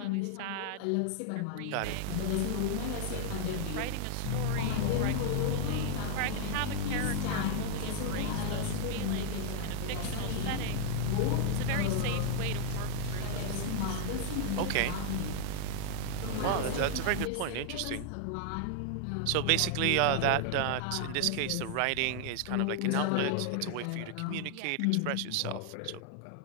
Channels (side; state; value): both; different; correlation 0.00